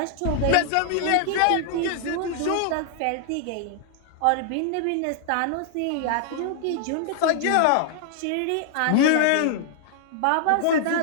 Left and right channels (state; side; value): different; both; correlation 0.00